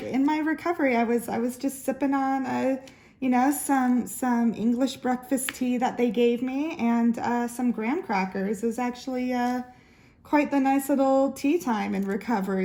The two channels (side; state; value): both; identical; correlation 1.00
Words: in my recovery, I was just sipping on some English breakfast tea that they gave me, and some graham crackers. It was actually quite the nice little tea time in